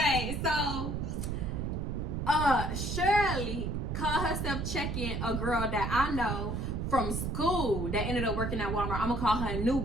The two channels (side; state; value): right; noise; rumble, 2 dB below the sound